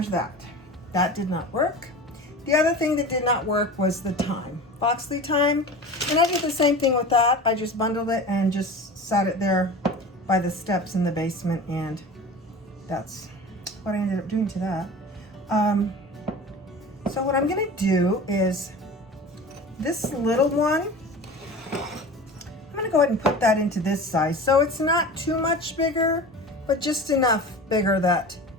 that. That did not work. The other thing that did not work was the thyme, Foxley thyme. And I did the same thing with that. I just bundled it and just sat it there by the steps in the basement, and that's what I ended up doing to that. So what I'm gonna do is this little one, I'm gonna go ahead and put that into this size. So it's not too much bigger, but just enough bigger that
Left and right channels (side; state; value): both; normal; correlation 0.35